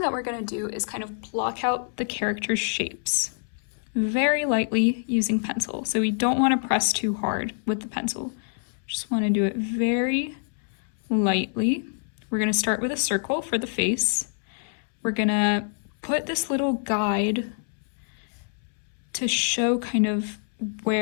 that we're going to do is kind of block out the character's shapes very lightly using pencil. So we don't want to press too hard with the pencil. Just want to do it very lightly. We're going to start with a circle for the face. We're going to put this little guide to show kind of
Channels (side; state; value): right; silent; 61 dB below the other